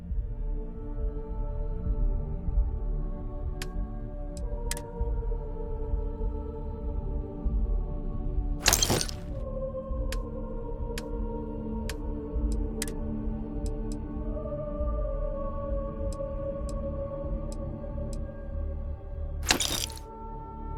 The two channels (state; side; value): identical; both; correlation 1.00